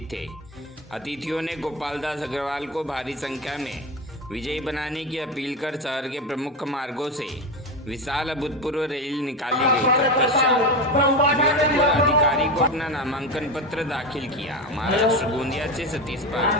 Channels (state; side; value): normal; both; correlation 0.19